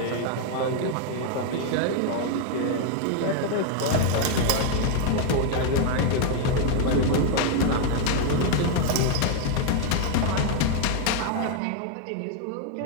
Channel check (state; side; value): different; both; correlation 0.00